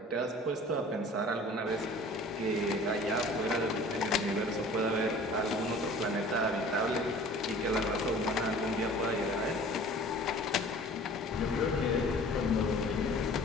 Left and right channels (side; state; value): both; normal; correlation 0.46